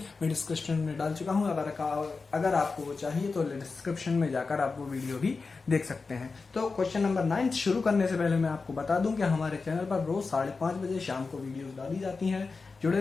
मैं डिस्क्रिप्शन में डाल चुका हूं। अगर आपको वो चाहिए तो डिस्क्रिप्शन में जाकर आप वो वीडियो भी देख सकते हैं। तो क्वेश्चन नंबर 9 शुरू करने से पहले मैं आपको बता दूं कि हमारे चैनल पर रोज 5:30 बजे शाम को वीडियो डाली जाती हैं।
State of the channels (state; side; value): quieter; right; 4.3 dB